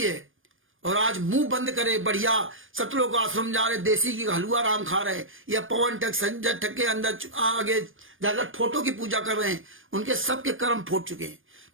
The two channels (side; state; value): left; late; 0.59 ms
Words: है और आज मुंह बंद करे बढ़िया सतलोक आश्रम जा रहे, देसी की हलवा राम खा रहे, या पवन टक संजय टक के अंदर आगे जाकर फोटो की पूजा कर रहे हैं, उनके सबके कर्म फूट चुके हैं।